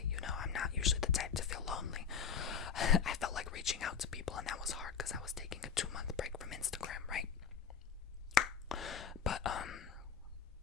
You know, I'm not usually the type to feel lonely. I felt like reaching out to people, and that was hard because I was taking a 2-month break from Instagram, right? But,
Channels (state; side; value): quieter; right; 6.9 dB